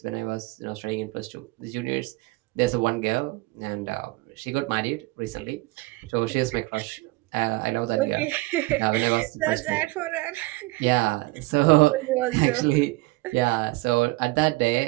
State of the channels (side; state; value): left; quieter; 22.1 dB